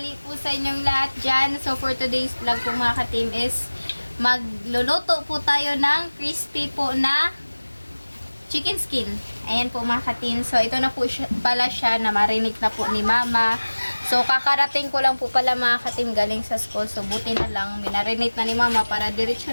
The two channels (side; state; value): both; inverted; correlation -1.00